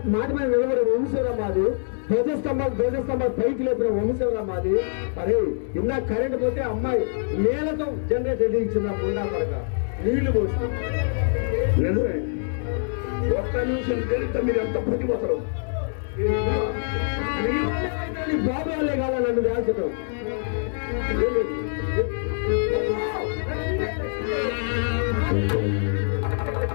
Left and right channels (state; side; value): silent; right; 62 dB below the other